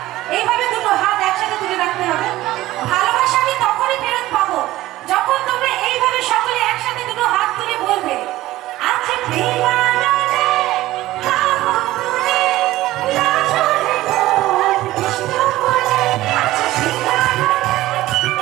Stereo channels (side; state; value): left; quieter; 16.4 dB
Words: এইভাবে দুটো হাত একসাথে তুলে রাখতে হবে। ভালোবাসা আমি তখনই ফেরত পাবো যখন তোমরা এইভাবে সকলে একসাথে দুটো হাত তুলে বলবে, আচ্ছা প্রেমানন্দে গাবো তুলে নাচরে মোর কৃষ্ণ বলে, আচ্ছা প্রেমানন্দে